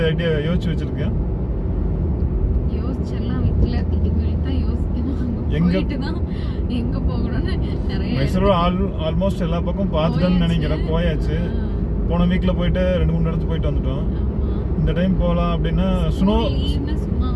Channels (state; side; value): identical; both; correlation 1.00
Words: ஐடியா யோசிச்சு வச்சுருக்கேன்? மைசூர் ஆல்மோஸ்ட் எல்லா பக்கம் பார்த்துட்டோன்னு நினைக்கிறேன். போயாச்சு. போன வீக்கில் போயிட்டு 2-3 இடத்துக்கு போயிட்டு வந்துட்டோம். இந்த டைம் போகலாம் அப்படின்னா ஸ்னோ